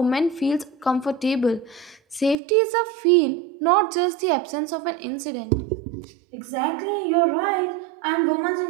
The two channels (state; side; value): drops out; left; at 2.4 s